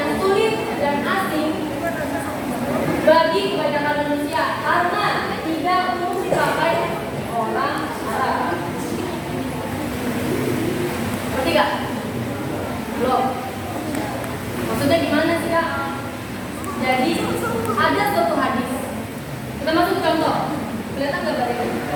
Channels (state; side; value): identical; both; correlation 1.00